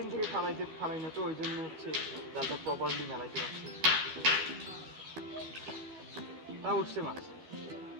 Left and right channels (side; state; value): left; late; 12 ms